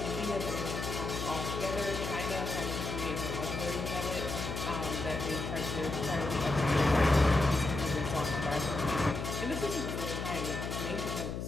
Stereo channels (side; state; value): left; noise; hum, 4 dB below the sound